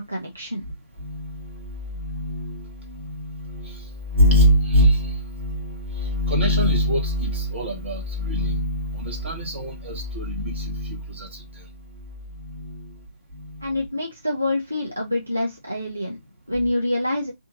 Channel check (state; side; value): inverted; both; correlation -0.43